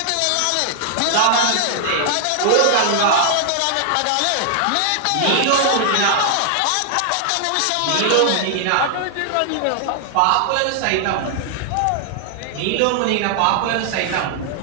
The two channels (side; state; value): both; different; correlation 0.00